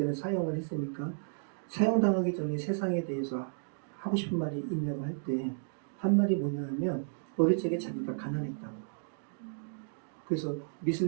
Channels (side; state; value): left; silent; digital silence